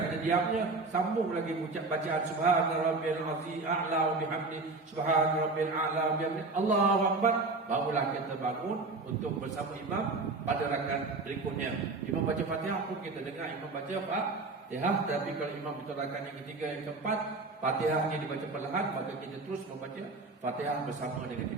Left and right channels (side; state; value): left; quieter; 3.6 dB